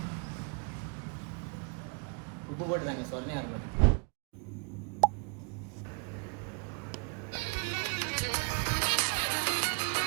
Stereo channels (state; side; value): quieter; left; 38.6 dB